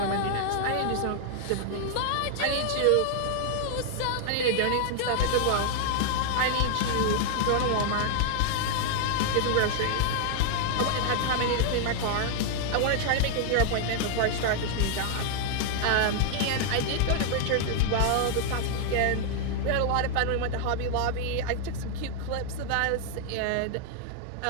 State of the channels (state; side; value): different; both; correlation 0.00